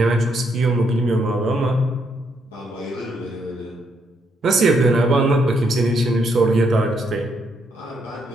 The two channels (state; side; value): normal; both; correlation 0.75